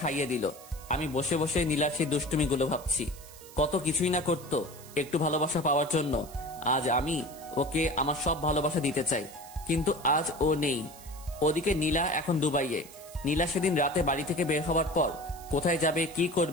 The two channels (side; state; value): right; noise; hiss, 19 dB below the sound